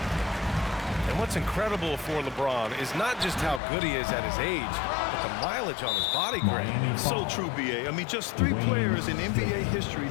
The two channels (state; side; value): drops out; right; at 3.6 s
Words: And what's incredible for LeBron is not just how good he is at his age, but the mileage on his body grade. So true, B.A. I mean, just 3 players in NBA history